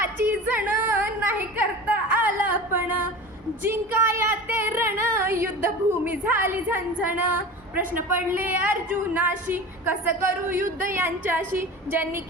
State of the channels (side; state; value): both; normal; correlation 0.34